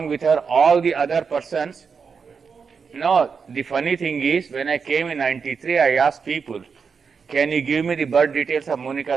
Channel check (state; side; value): quieter; left; 5.7 dB